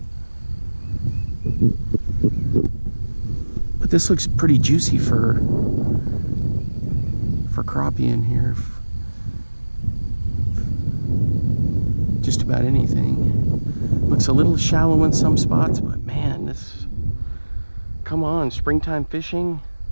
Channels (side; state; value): both; inverted; correlation -1.00